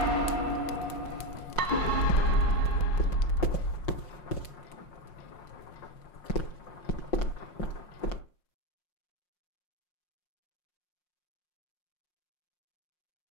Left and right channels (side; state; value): right; late; 5.6 ms